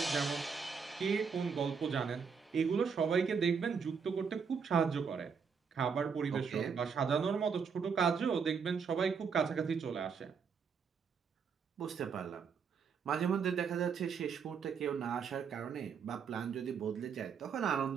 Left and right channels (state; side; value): quieter; left; 6.1 dB